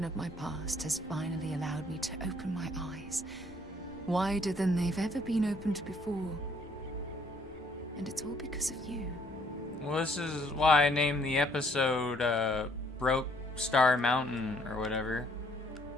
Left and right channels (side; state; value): both; normal; correlation 0.65